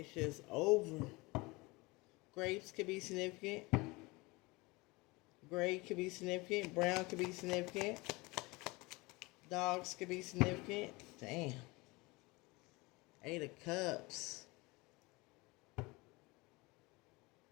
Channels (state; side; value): quieter; right; 24.1 dB